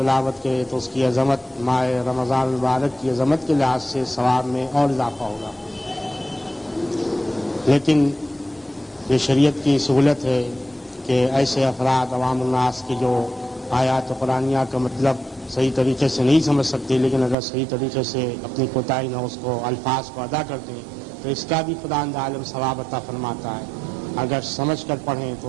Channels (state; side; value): drops out; left; at 17.4 s